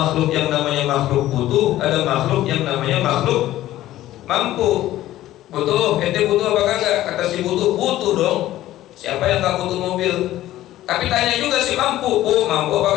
yang namanya makhluk butuh, ada makhluk yang namanya makhluk mampu. Butuh, ente butuh apa kagak? Kata si butuh dong. Siapa yang gak butuh mobil? Tapi tanya juga si mampu, mampu apa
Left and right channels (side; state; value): right; quieter; 14.5 dB